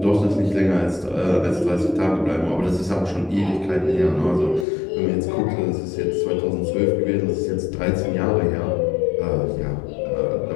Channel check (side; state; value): right; drops out; at 4.7 s